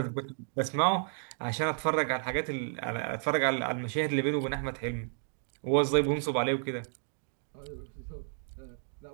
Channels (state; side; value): silent; left; digital silence